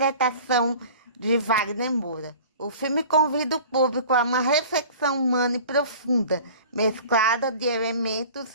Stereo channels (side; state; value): both; inverted; correlation -0.43